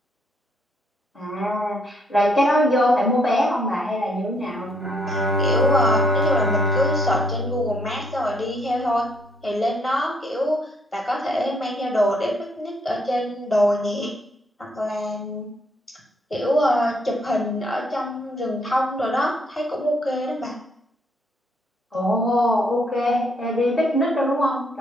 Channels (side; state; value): both; normal; correlation 0.70